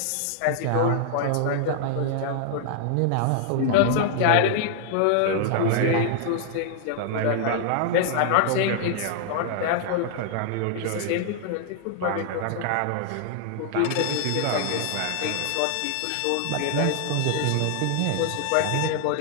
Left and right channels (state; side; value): different; both; correlation 0.00